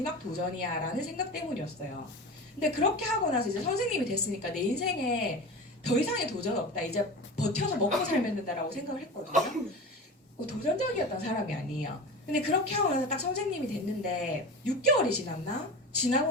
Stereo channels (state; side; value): normal; both; correlation 0.30